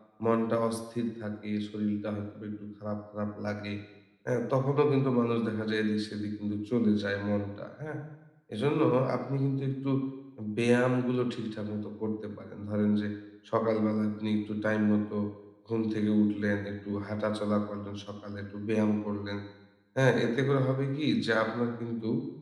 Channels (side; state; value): both; identical; correlation 1.00